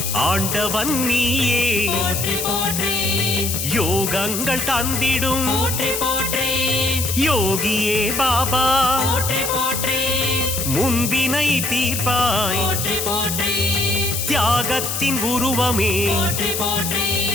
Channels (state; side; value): noise; left; hiss, 2 dB below the sound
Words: ஆண்டவன் நீயே போற்றி போற்றி யோகங்கள் தந்திடும் போற்றி போற்றி யோகியே பாபா போற்றி போற்றி முன்பினை தீர்ப்பாய் போற்றி போற்றி தியாகத்தின் உருவமே போற்றி போற்றி